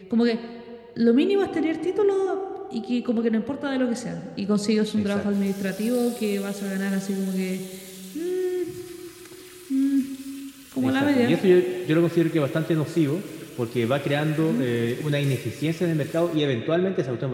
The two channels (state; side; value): identical; both; correlation 1.00